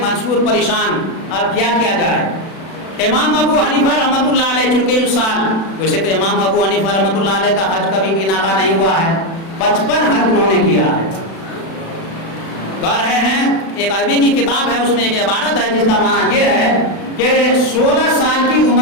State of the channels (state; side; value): late; right; 36 ms